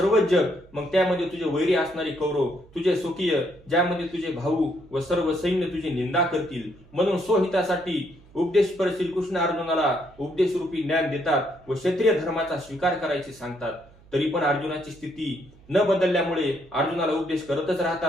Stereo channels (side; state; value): right; noise; hum, 26 dB below the sound